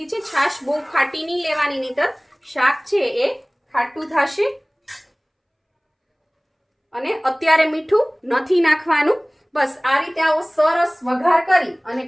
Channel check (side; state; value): both; identical; correlation 1.00